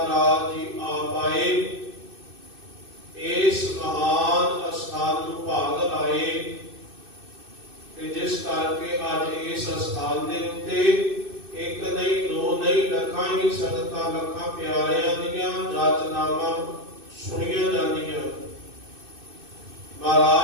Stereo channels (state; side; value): late; left; 2.6 ms